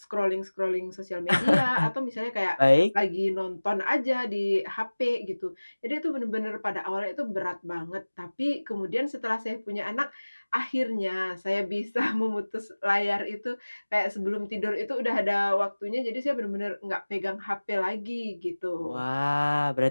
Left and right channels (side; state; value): both; inverted; correlation -1.00